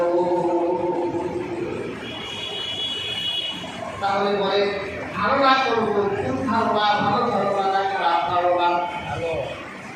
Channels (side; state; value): both; identical; correlation 1.00